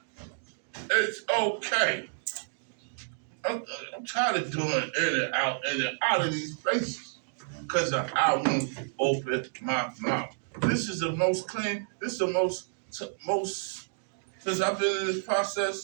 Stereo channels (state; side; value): silent; left; digital silence